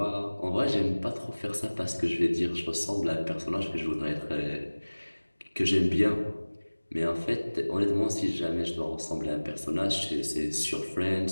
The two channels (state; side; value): inverted; both; correlation -1.00